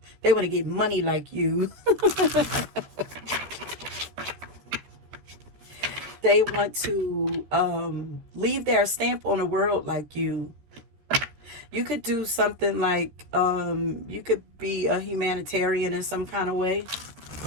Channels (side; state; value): left; late; 14 ms